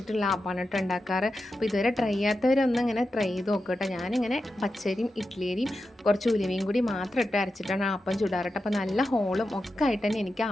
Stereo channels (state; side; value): normal; both; correlation 0.90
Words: ആപ്പാണ് കേട്ടോ ഉണ്ടാക്കാറ്. അപ്പോൾ ഇതുവരെ ട്രൈ ചെയ്യാത്തവരൊന്നും ഇങ്ങനെ ട്രൈ ചെയ്ത് നോക്കുക കേട്ടോ. ഞാനിങ്ങനെ പച്ചരിയും ഇഡ്ഡലിയും കുറച്ച് ഉലുവയും കൂടി മാത്രം ഇട്ട് അരച്ചിട്ടാണ് ആപ്പം ചുടാറ്. അപ്പോൾ നല്ല ഹോളും ഒക്കെ ആയിട്ട് തന്നെ എനിക്ക്